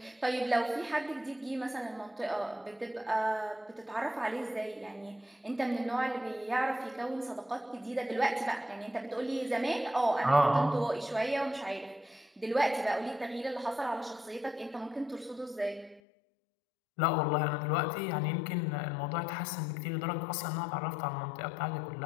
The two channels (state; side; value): drops out; right; at 16.0 s